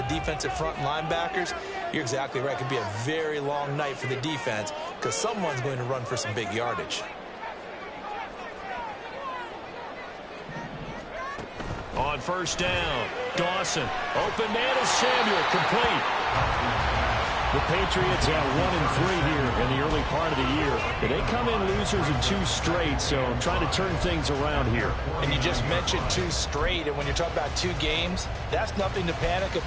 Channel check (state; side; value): identical; both; correlation 1.00